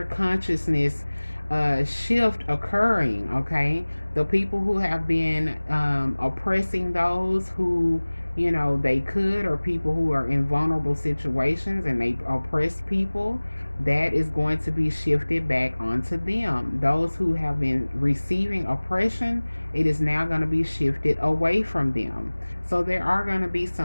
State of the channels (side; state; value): both; inverted; correlation -1.00